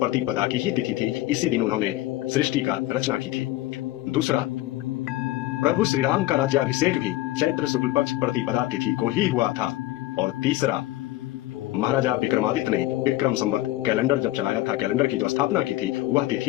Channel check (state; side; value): quieter; right; 16.6 dB